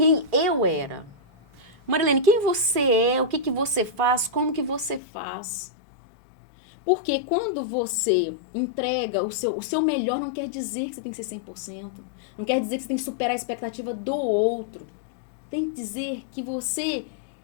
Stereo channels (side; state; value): right; drops out; at 5.0 s